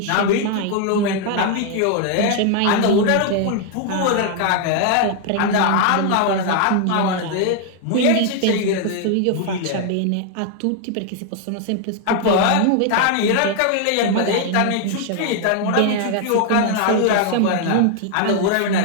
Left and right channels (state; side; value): different; both; correlation 0.00